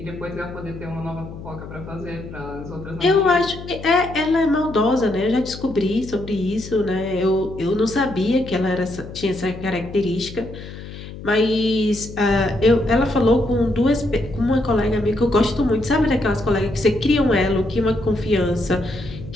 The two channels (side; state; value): left; noise; hum, 13 dB below the sound